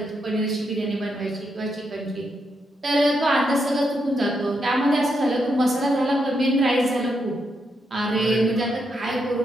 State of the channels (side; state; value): both; normal; correlation 0.81